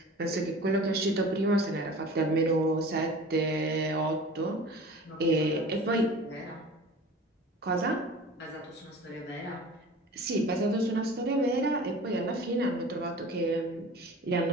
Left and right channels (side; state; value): both; normal; correlation 0.41